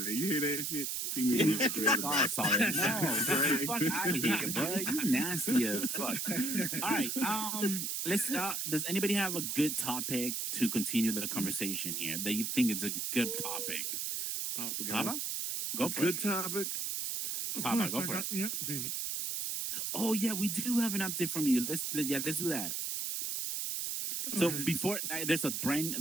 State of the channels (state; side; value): noise; right; hiss, 2 dB below the sound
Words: You hear that shit? See me the one with everybody. Oh, sorry. No, fuck out of here, bro. You nasty as fuck. All right, let's start. Does anybody have a good topic to continue the conversation here that you think is a good topic? Papa, go for it. Good topic. Papa, go for it. Oh yeah, we do have an update from you. Let's do that. So before there's